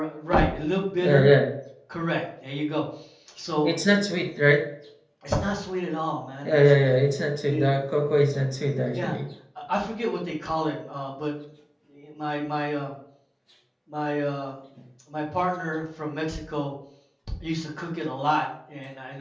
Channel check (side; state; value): both; identical; correlation 1.00